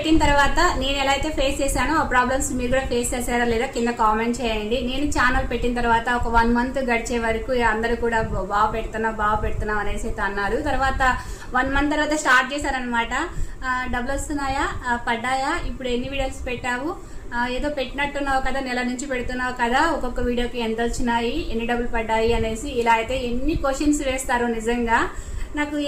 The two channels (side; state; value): both; identical; correlation 1.00